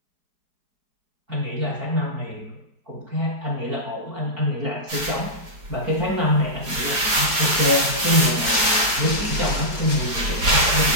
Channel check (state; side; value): late; left; 4.8 ms